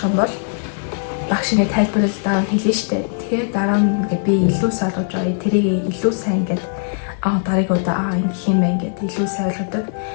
юм бол багш ингээд тайлбарлал дараа нь хэлнэ штэ. Тэгээд дараа нь ингээд би илүү ойлгож байгаа. Тэрийг илүү сайн ингээд дараагийн удаа ингэх юм байна ингээд илүү сайн ойлгодог.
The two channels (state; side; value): silent; right; digital silence